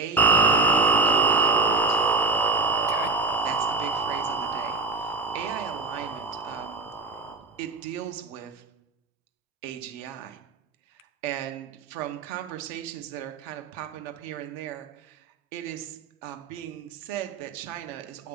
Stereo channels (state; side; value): quieter; left; 3.7 dB